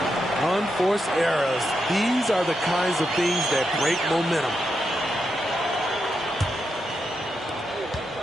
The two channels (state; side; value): normal; both; correlation 0.84